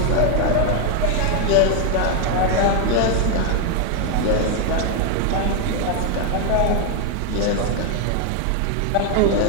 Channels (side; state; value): both; different; correlation 0.01